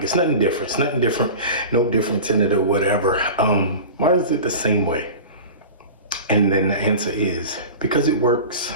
it's nothing different. It's nothing different, no difference in it or whatever. Why is it the same way? And then the answer is because it works.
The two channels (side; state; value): both; inverted; correlation -0.33